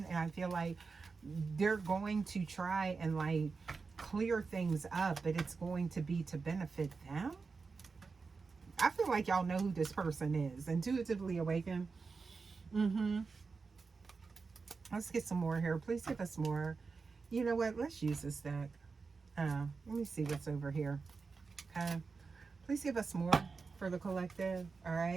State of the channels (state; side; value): quieter; left; 4.6 dB